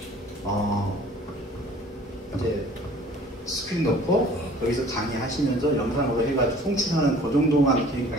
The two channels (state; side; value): normal; both; correlation 0.50